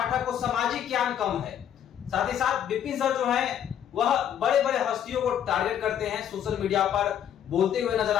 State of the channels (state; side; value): quieter; right; 9.7 dB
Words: को सामाजिक ज्ञान कम है। साथ ही साथ विपिन सर जो है वह बड़े बड़े हस्तियों को टारगेट करते हैं, सोशल मीडिया पर बोलते हुए नजर